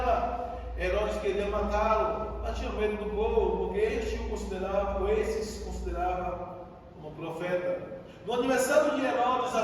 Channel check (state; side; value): identical; both; correlation 1.00